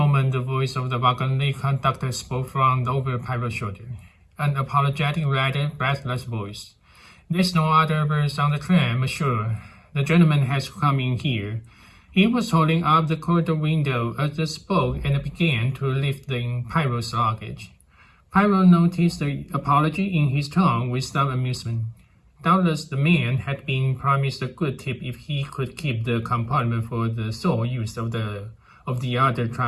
the voice of the wagon conductor spoke from over Pyro's shoulder. An apologetic, rather breathless voice. There's no other berth on the train, monsieur. The gentleman has come in here. He was holding up the corridor window as they spoke and began to lift in Pyro's luggage. Pyro noticed the apology in his tone with some amusement. Doubtless the man had been promised a good tip if he could keep the compartment for the sole use of the other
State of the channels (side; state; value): both; identical; correlation 1.00